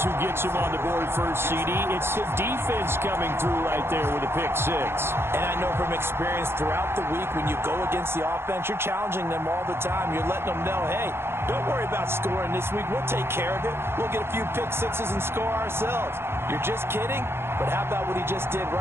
who gets him on the board first, CD. It's the defense coming through right there with a pick 6. And I know from experience throughout the week when you go against the offense, you're challenging them all the time. You're letting them know, hey, don't worry about scoring this week. We'll take care of it. We'll get a few pick 6s and score ourselves. You're just kidding? But how about what he just did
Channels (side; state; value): left; late; 0.12 ms